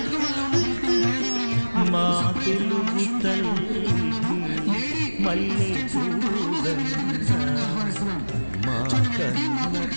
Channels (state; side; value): inverted; both; correlation -1.00